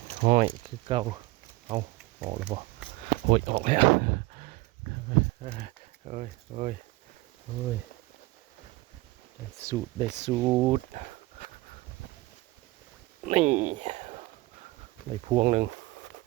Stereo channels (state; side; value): quieter; left; 20.7 dB